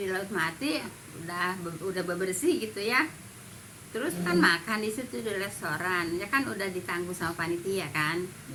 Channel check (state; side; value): identical; both; correlation 1.00